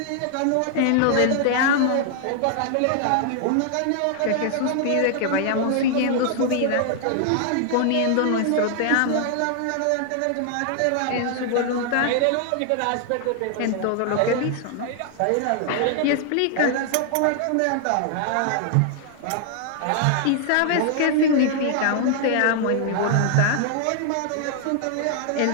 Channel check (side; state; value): both; different; correlation 0.00